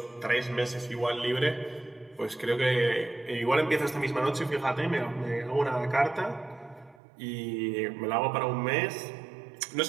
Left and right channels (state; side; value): drops out; left; at 7.0 s